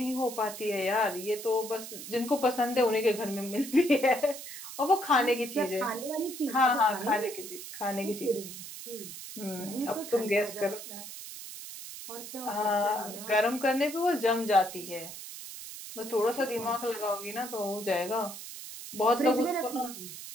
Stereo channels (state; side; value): noise; right; hiss, 11 dB below the sound